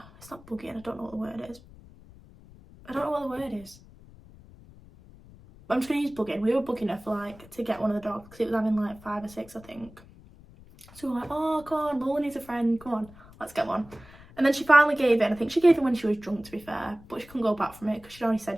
It's not bugging, I don't know what the word is. I don't know what the word is. I'm just gonna use bugging. We were bugging her for like to get one of the dogs, because it was having like 5 or 6, I think. So we were like, oh come on, Lola needs a friend, come on, let's get one. And then she finally gave in. I think she gave in when she was drunk, to be fair, but she couldn't go back from it because she'd already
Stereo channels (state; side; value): noise; left; rumble, 22 dB below the sound